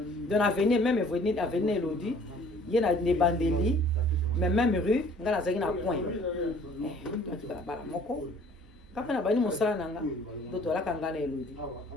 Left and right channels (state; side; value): normal; both; correlation 0.54